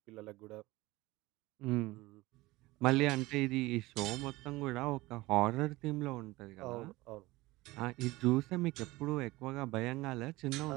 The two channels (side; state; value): left; quieter; 20.1 dB